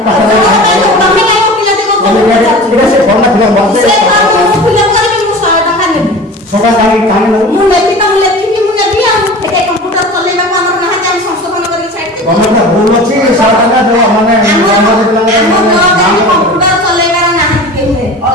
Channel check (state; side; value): normal; both; correlation 0.36